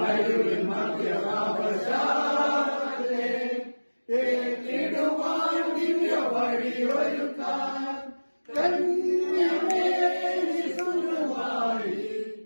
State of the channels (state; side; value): inverted; both; correlation -1.00